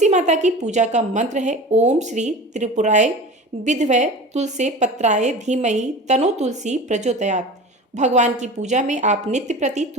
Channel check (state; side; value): normal; both; correlation 0.34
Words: माता की पूजा का मंत्र है ओम श्री त्रिपुराय विद्महे तुलसी पत्राय धीमहि तनो तुलसी प्रचोदयात्। भगवान की पूजा में आप नित्य प्रति